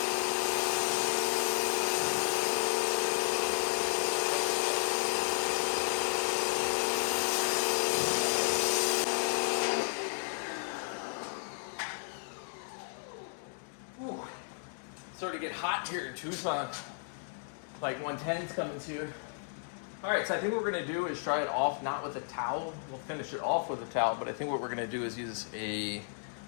starting to get hot here in Tucson. Like 110's coming soon. All right, so I think what we're gonna do is try it off, not with a towel. We'll finish it off with a towel, but I think what we're gonna do is use a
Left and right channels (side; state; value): right; silent; digital silence